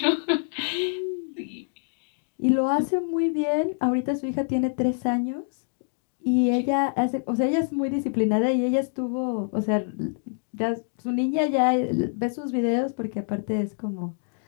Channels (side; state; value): right; silent; digital silence